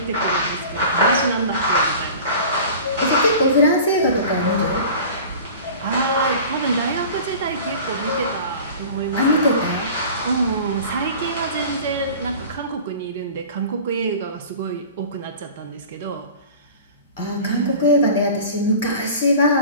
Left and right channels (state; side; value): inverted; both; correlation -0.40